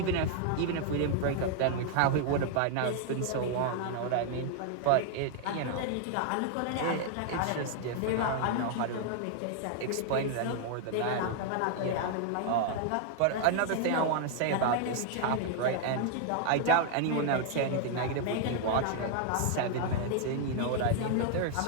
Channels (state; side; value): different; both; correlation 0.00